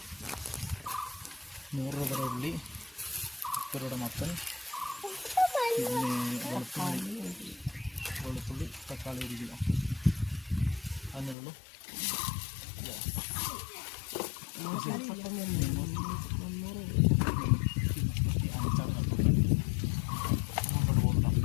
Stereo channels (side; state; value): right; drops out; at 11.4 s